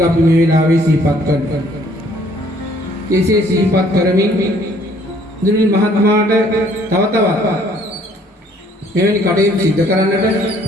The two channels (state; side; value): normal; both; correlation 0.61